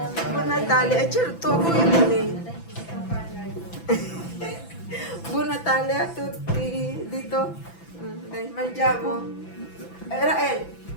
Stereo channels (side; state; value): right; late; 6.0 ms